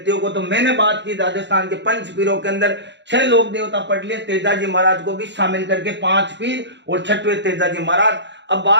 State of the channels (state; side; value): late; left; 0.52 ms